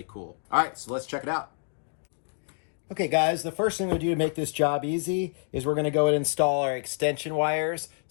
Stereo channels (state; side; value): silent; right; digital silence